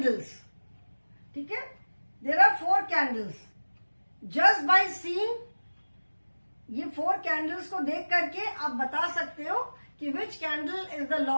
ठीक है. There are 4 candles. Just by seeing ये 4 कैंडल्स को देख करके आप बता सकते हो कि which candle is the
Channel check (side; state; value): both; inverted; correlation -1.00